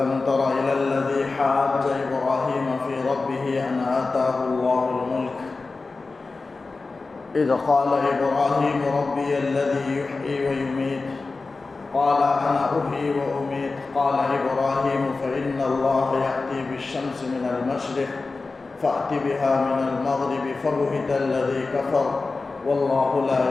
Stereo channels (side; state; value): right; quieter; 3.8 dB